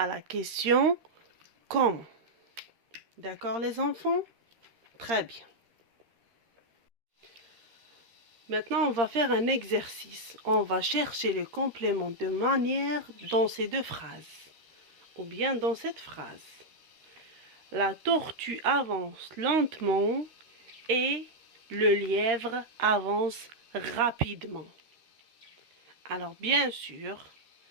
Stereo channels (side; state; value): left; late; 13 ms